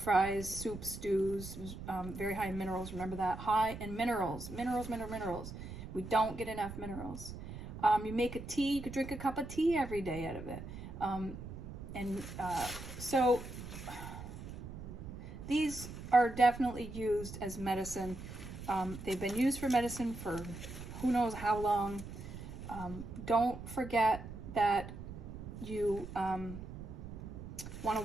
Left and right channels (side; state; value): right; noise; rumble, 10 dB below the sound